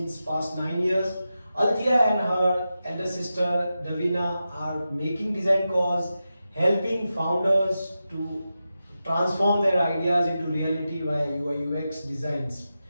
past 9 years. Althea and her elder sister Davina are making Designcoz, helping founders to transform their ideas into reality via UI/UX designs.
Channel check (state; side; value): inverted; both; correlation -0.91